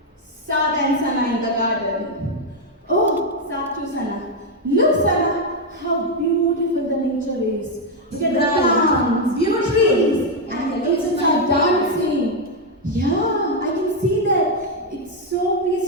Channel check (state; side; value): normal; both; correlation 0.03